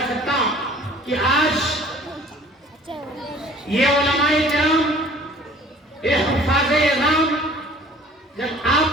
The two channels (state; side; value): normal; both; correlation 0.51